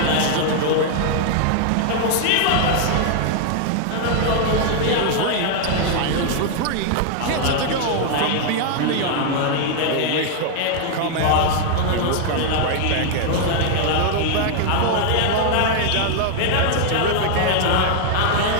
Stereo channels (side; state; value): both; different; correlation 0.00